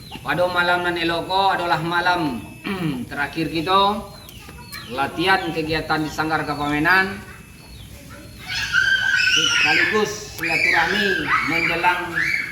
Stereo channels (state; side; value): identical; both; correlation 1.00